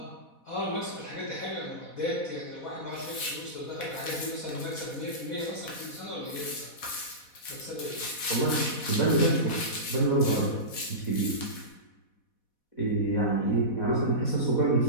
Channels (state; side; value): late; right; 4.1 ms